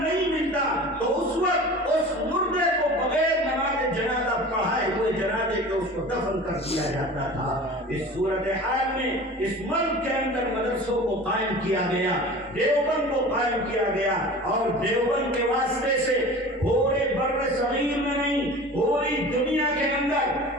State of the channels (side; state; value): both; normal; correlation 0.38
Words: ملتا، تو اس وقت اس مردے کو بغیر نماز جنازہ پڑھائے ہوئے جنازے کے اس کو دفن کر دیا جاتا تھا۔ اس صورتحال میں اس ملک کے اندر مدرسوں کو قائم کیا گیا، دیوبند کو قائم کیا گیا، اور دیوبند کے واسطے سے پورے بر صغیر میں نہیں، پوری دنیا کے اندر